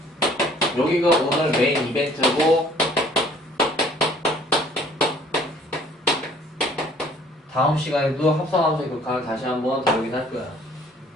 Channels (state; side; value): normal; both; correlation 0.56